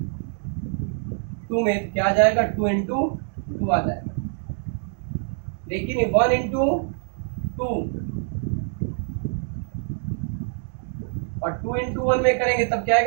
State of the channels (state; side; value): silent; left; 62 dB below the other